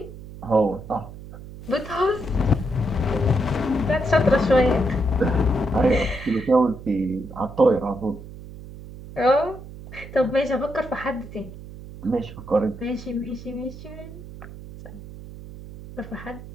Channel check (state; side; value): noise; right; hum, 14 dB below the sound